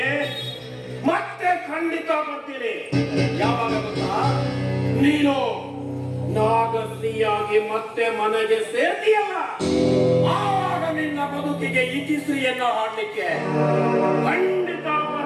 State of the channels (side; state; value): both; identical; correlation 1.00